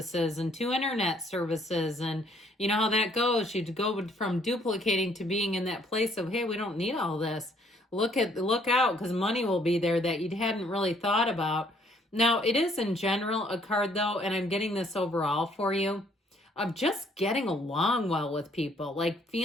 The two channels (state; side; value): normal; both; correlation 0.64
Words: and 2 internet services, and you know how that goes, you go from duplicating to being in that place of, hey, we don't need all this. Look out, because money will be there that you hadn't really thought about. Now, it is in general a card though, and I'm getting this overall for you, of just getting along well with people, like